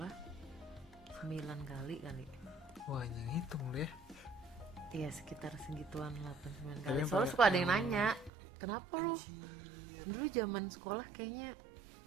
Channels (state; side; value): drops out; left; at 8.3 s